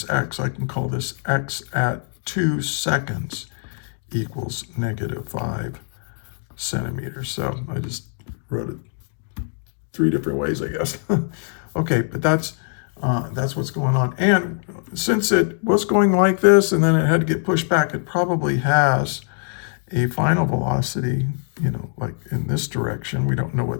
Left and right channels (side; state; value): right; silent; 64 dB below the other